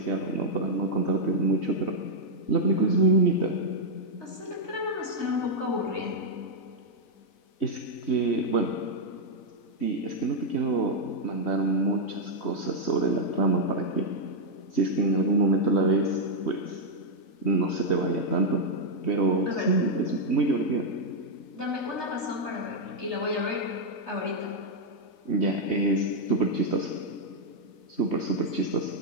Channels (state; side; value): late; right; 4.0 ms